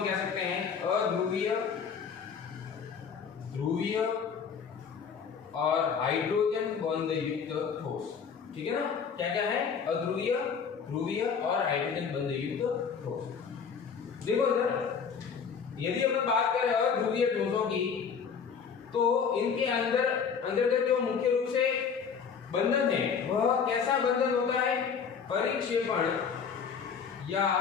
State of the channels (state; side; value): quieter; right; 6.4 dB